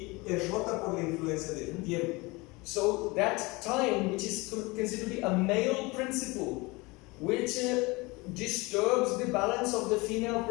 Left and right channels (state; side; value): quieter; right; 24.4 dB